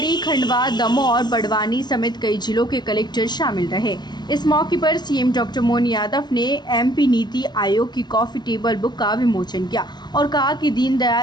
खंडवा, दमोह और बड़वानी समेत कई जिलों के कलेक्टर शामिल रहे। इस मौके पर सीएम डॉक्टर मोहन यादव ने एमपी नीति आयोग की कॉफी टेबल बुक का विमोचन किया और कहा कि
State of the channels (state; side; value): late; right; 0.21 ms